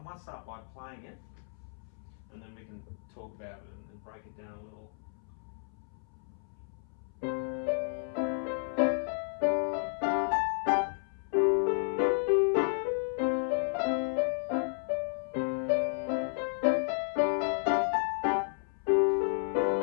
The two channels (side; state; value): right; silent; 56 dB below the other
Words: might start by playing it, and then we can talk about it and break it down a little.